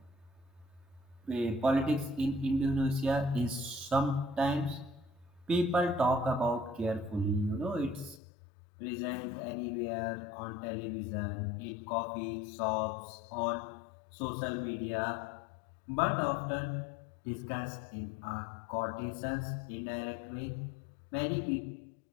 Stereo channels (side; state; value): right; drops out; at 8.2 s